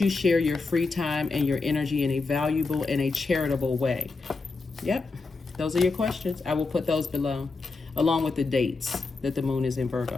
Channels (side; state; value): right; quieter; 3.9 dB